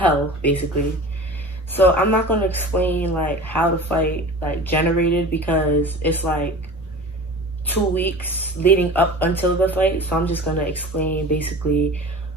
basically. So I'm not gonna explain like how the fight like generated because it's like 2 weeks leading up until the fight. So I'm just gonna explain basically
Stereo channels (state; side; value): normal; both; correlation 0.37